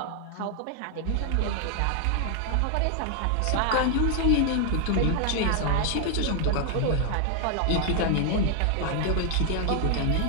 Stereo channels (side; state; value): both; different; correlation 0.00